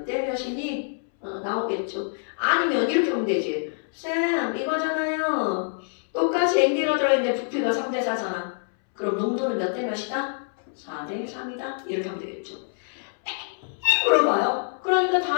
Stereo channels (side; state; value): right; silent; 61 dB below the other